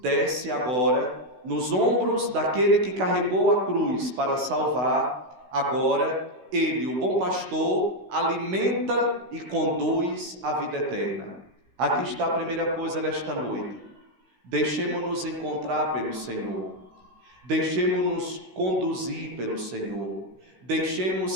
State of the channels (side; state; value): left; late; 16 ms